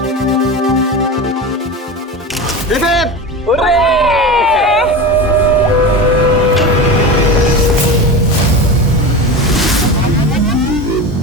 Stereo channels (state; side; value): normal; both; correlation 0.26